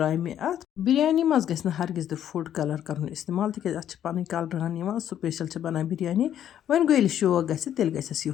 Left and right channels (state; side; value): quieter; right; 10.5 dB